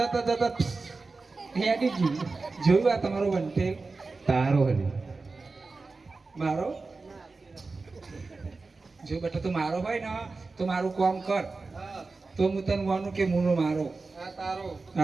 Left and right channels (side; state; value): left; quieter; 3.9 dB